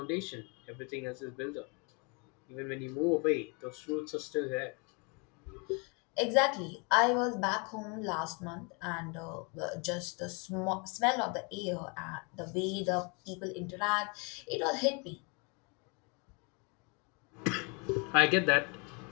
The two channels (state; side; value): quieter; right; 32.7 dB